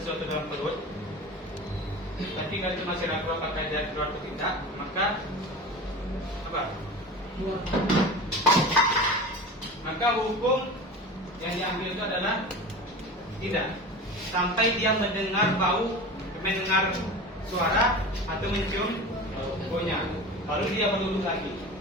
dalam perut, tapi kalian itu masih ragu apakah dia keluar atau tidak, maka apa? Maka hukum yang diambil itu adalah tidak, sampai dia mendengar bau, mendengar suara atau mencium baunya, baru dia berwudu lagi.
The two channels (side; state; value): both; normal; correlation 0.32